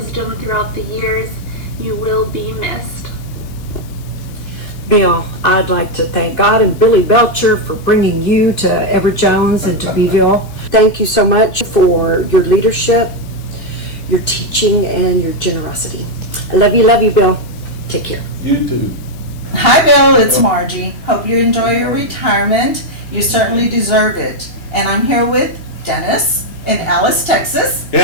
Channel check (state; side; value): late; right; 2.8 ms